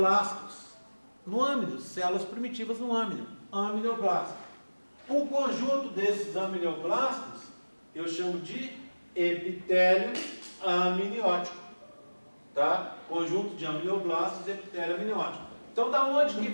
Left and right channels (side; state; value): both; inverted; correlation -1.00